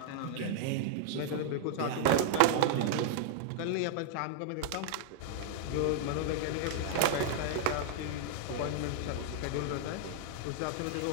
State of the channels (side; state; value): both; different; correlation -0.01